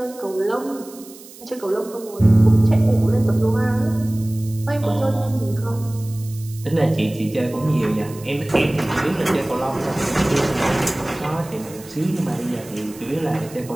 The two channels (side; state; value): right; noise; hiss, 19 dB below the sound